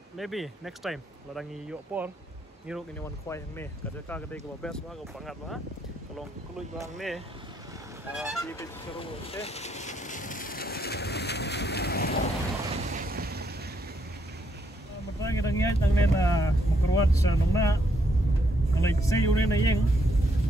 maybe next time ladangi yo por ngiro ini wan khoi hang ne ka ka dei ko best wa ko pangat wa kalong klui bang ne ki pe sharom sti matang ngai tang ne na mokruat sa nong na ngalai sei ure na yeng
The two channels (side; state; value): both; normal; correlation 0.74